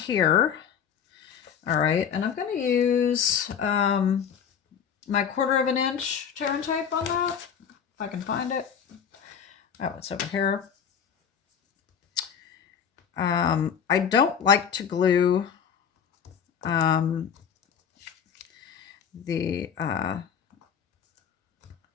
All right, and I'm going to use my 1/4 inch tear and tape on that. If I can find it. Oh, it's over here. I don't like to glue I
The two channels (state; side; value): quieter; right; 7.6 dB